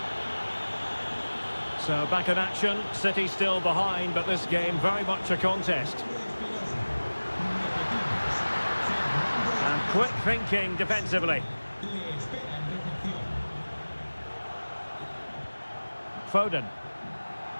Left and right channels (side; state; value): both; inverted; correlation -1.00